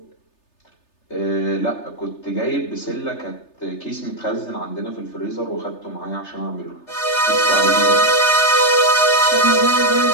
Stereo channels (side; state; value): right; late; 3.3 ms